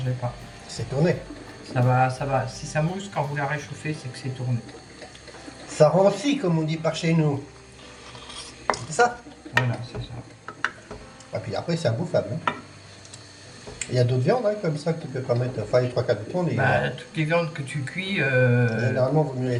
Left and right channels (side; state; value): both; identical; correlation 1.00